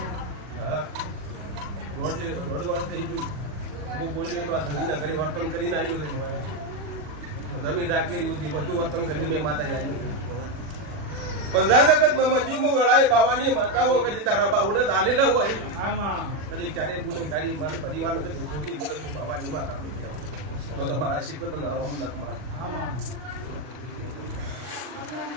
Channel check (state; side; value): late; left; 40 ms